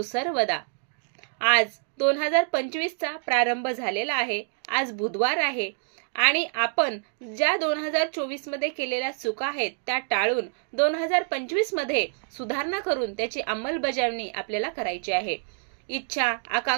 आज 2025चा प्रारंभ झालेला आहे. आज बुधवार आहे आणि आपण ज्या 2024मध्ये केलेल्या चुका आहेत त्या टाळून 2025मध्ये सुधारणा करून त्याची अंमलबजावणी आपल्याला करायची आहे. इच्छा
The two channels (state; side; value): silent; left; digital silence